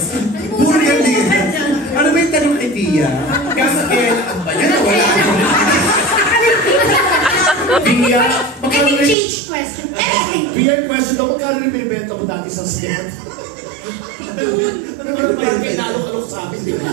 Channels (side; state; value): left; drops out; at 9.2 s